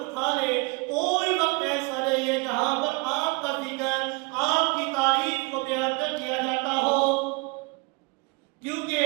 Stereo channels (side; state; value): left; quieter; 29.5 dB